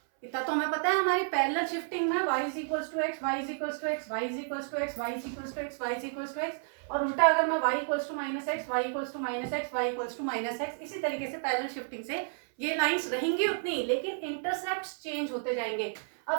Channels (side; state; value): left; silent; 57 dB below the other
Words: इतना तो हमें पता है हमारी पैरेलल शिफ्टिंग में y is equals to x, y is equals to x, y is equals to x, y is equals to x, y is equals to x, y उल्टा equals to y equals to minus x, y equals to minus x, y equals to minus x, इसी तरीके से parallel shifting से ये lines रहेंगी उतनी, लेकिन intercepts change होते जाएंगे।